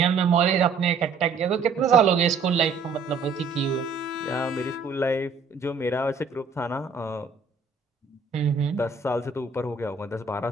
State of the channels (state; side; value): quieter; left; 5.0 dB